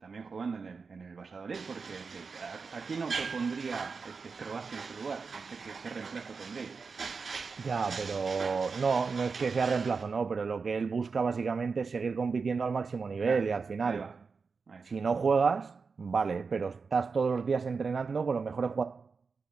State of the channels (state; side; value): quieter; left; 4.9 dB